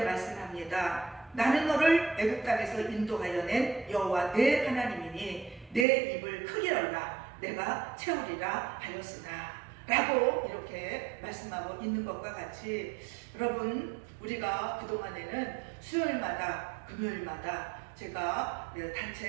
말씀합니다. 나는 너를 애굽 땅에서 인도하여 낸 여호와 내 하나님이니 내 입을 크게 열라 내가 채우리라 하였으나, 라고 이렇게 말씀하고 있는 것과 같이, 여러분, 우리가 그동안에는 수요일마다 금요일마다 제가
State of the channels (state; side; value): drops out; left; at 5.9 s